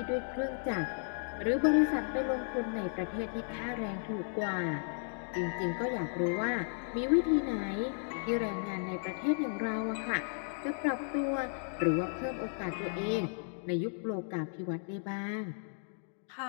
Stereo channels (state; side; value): silent; right; digital silence